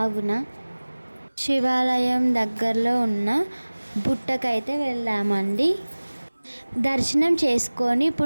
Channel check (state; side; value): inverted; both; correlation -1.00